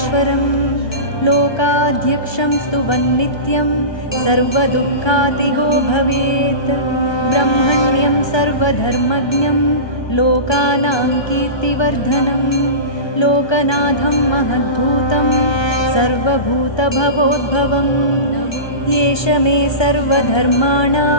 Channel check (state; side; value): late; right; 1.2 ms